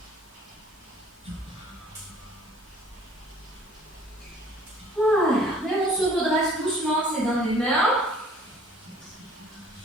Voilà. Et on se redresse doucement, c'est dans les mains.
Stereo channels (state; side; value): normal; both; correlation 0.54